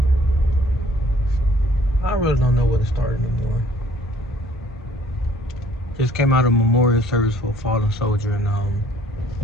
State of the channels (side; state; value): both; normal; correlation 0.58